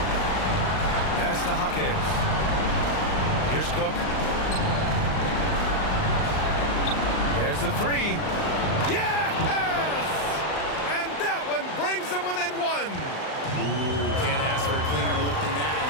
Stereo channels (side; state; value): right; late; 39 ms